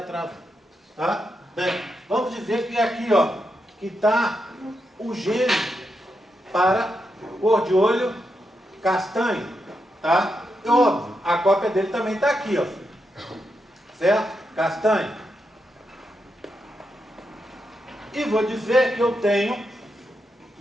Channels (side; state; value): both; normal; correlation 0.84